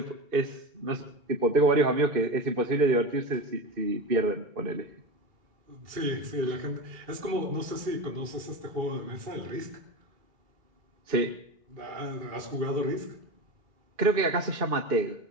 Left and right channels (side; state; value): left; late; 2.6 ms